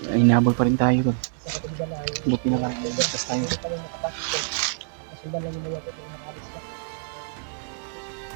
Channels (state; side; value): silent; left; digital silence